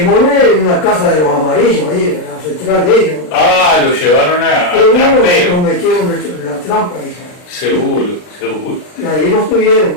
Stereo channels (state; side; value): late; right; 39 ms